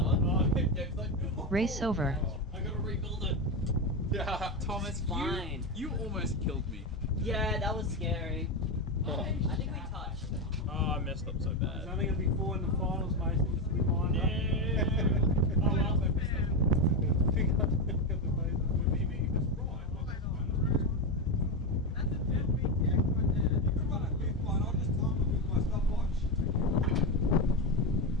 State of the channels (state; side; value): normal; both; correlation 0.13